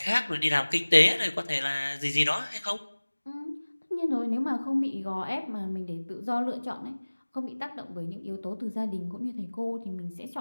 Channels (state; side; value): inverted; both; correlation -1.00